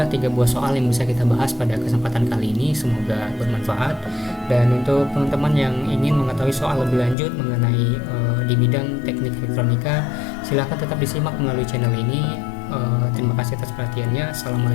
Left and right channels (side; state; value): right; drops out; at 7.2 s